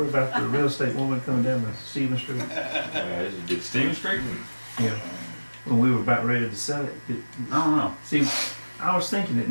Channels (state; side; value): inverted; both; correlation -1.00